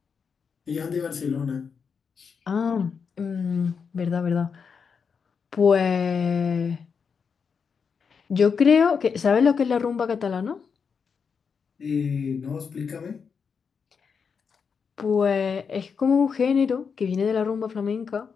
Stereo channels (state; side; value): quieter; right; 6.0 dB